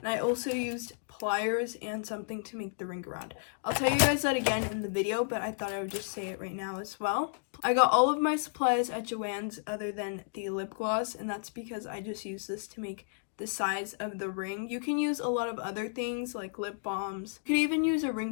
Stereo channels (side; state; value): right; silent; digital silence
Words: I also used pliers and something to make the ring around. I'll tell you guys that again in the video, but I thought I would just say it right now as well. I got all of my supplies at Joann's other than the lip gloss, and that's because I just use this to make the size of the ring. You can use a lot of other things like lip balms. You could even use a